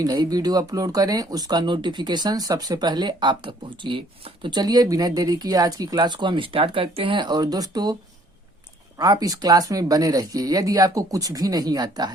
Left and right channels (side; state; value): both; normal; correlation 0.60